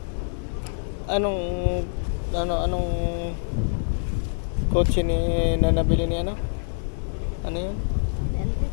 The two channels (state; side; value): silent; right; digital silence